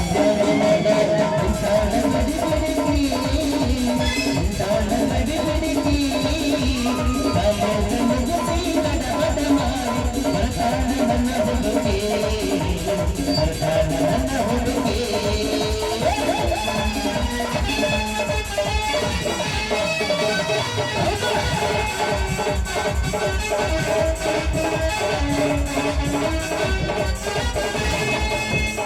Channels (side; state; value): both; identical; correlation 1.00